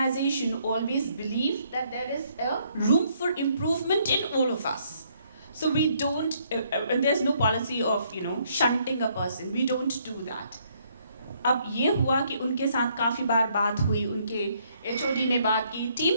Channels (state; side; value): inverted; both; correlation -0.68